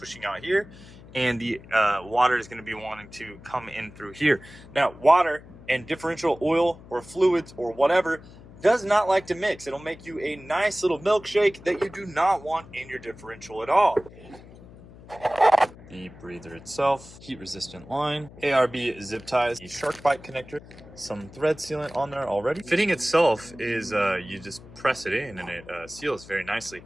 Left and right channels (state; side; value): noise; left; hum, 19 dB below the sound